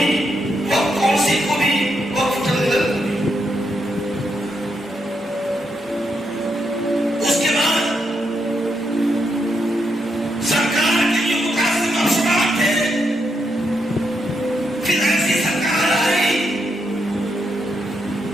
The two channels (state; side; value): normal; both; correlation 0.80